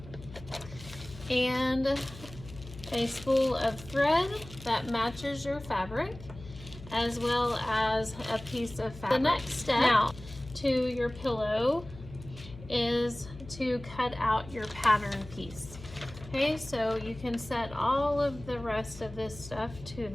and a spool of thread that matches your fabric, as well as a piece of fabric. The next step now to your pillow is to cut out your pattern piece. Okay, so you can set all of the rest of this stuff to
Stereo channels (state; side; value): noise; left; hum, 16 dB below the sound